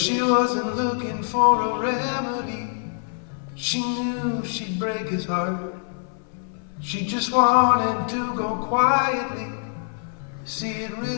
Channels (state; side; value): silent; right; 62 dB below the other